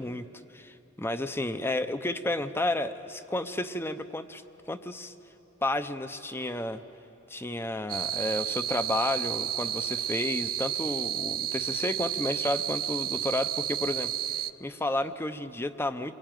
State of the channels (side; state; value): both; normal; correlation 0.55